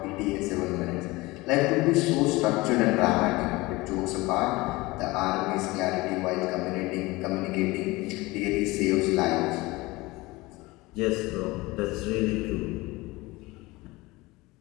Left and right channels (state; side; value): quieter; right; 21.6 dB